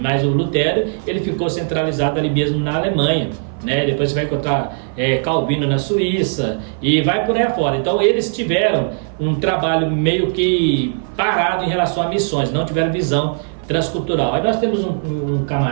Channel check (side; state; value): left; silent; 55 dB below the other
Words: o Lutero ele ficou centralizado ali mesmo na Alemanha, né? Depois você vai encontrar Calvino na Suíça e vai por aí afora. Então eles tiveram um trabalho meio que parado em relação a missões, não tiveram visão transcultural. Aí nós temos um